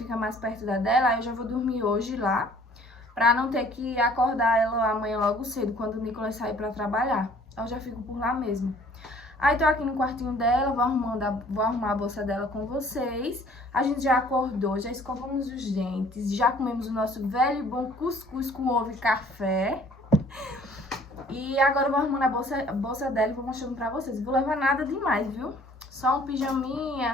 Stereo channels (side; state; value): both; normal; correlation 0.55